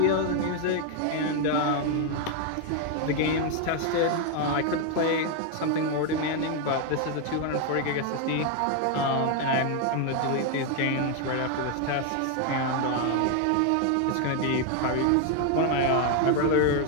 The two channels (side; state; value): both; different; correlation 0.01